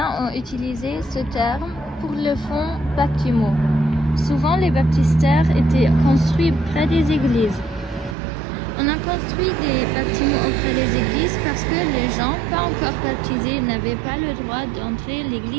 ont utilisé ce terme pour le fond baptismaux. Souvent, les baptistères étaient construits près des églises. On a construit des bâtiments auprès des églises parce que les gens pas encore baptisés n'avaient pas le droit d'entrer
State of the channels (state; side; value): drops out; left; at 8.2 s